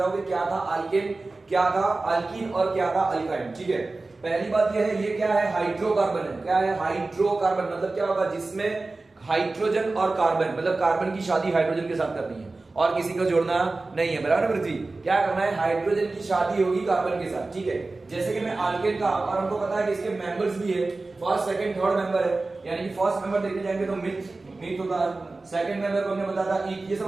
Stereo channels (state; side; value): quieter; left; 3.4 dB